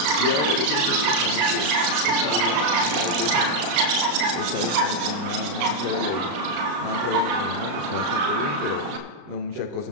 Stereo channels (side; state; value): left; late; 34 ms